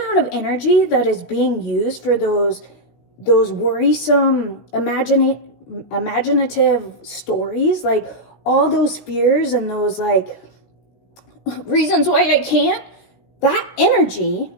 of energy that is being used for those worrisome, imaginative stories, like all those fears and those like reasons why I can't, that energy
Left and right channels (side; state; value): right; late; 16 ms